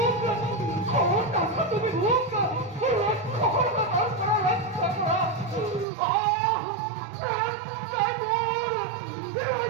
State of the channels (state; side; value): drops out; left; at 5.9 s